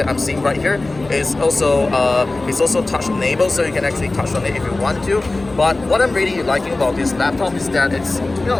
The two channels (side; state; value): right; quieter; 3.1 dB